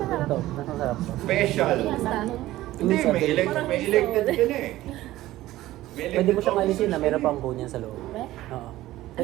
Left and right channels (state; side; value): quieter; left; 15.9 dB